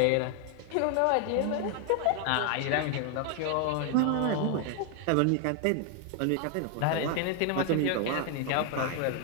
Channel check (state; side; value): different; both; correlation 0.00